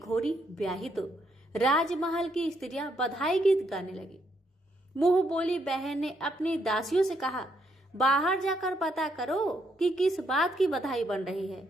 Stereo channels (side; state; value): both; normal; correlation 0.75